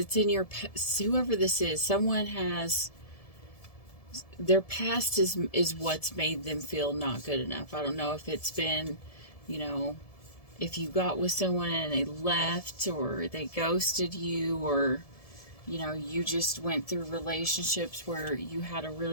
in your past. Whoever this is, someone has, their past is what's made them feel not good enough. I don't know if it's been, you know, if you got with someone and they left, or they ghosted you, or, you know, you just went through relationships where you had a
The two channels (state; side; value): late; right; 1.7 ms